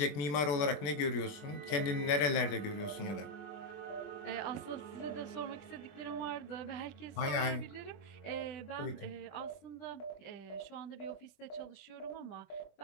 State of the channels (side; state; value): right; late; 20 ms